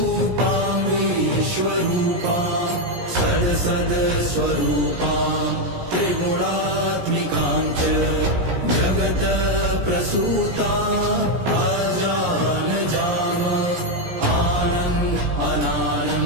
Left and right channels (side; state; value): left; late; 17 ms